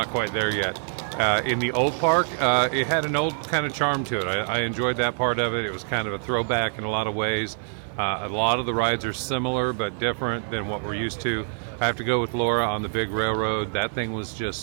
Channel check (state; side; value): silent; left; 62 dB below the other